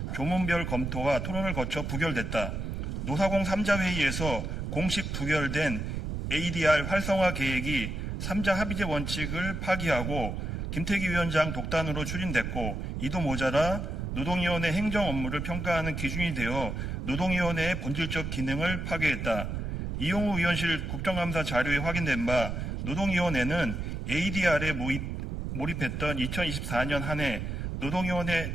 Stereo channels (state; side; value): noise; right; rumble, 4 dB below the sound